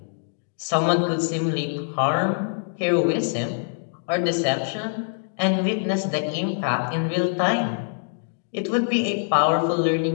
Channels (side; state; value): right; silent; digital silence